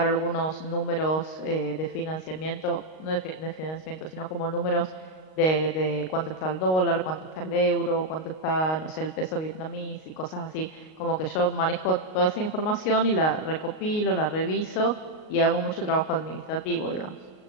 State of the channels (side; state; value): right; late; 38 ms